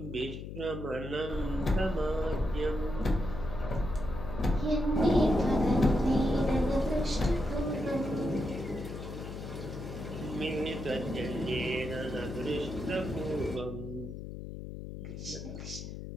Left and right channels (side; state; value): left; noise; hum, 9 dB below the sound